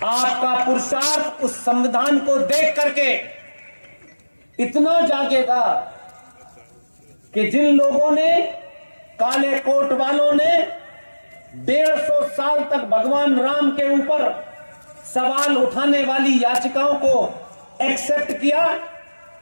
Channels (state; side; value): inverted; both; correlation -1.00